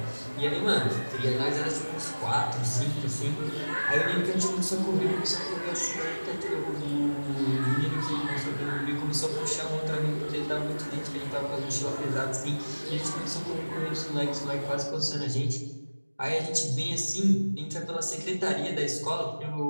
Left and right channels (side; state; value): both; inverted; correlation -1.00